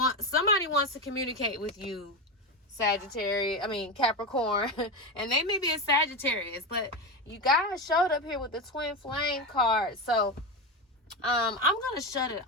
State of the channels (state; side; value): normal; both; correlation 0.16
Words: Somebody wants to communicate with you, Capricorn, and they may be a Sagittarius, but you guys showed up here with the twin flame card. So I'm gonna shut it